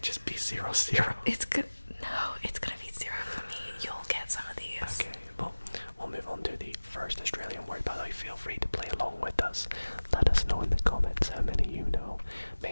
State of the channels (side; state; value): both; inverted; correlation -1.00